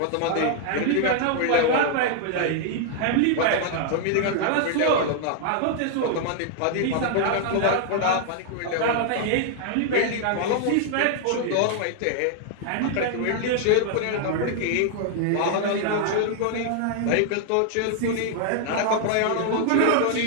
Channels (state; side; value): different; both; correlation 0.00